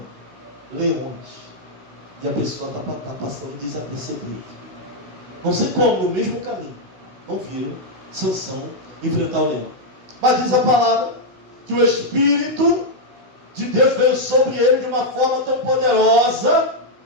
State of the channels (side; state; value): left; late; 16 ms